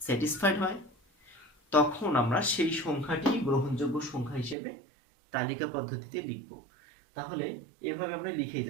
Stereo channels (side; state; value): left; drops out; at 4.5 s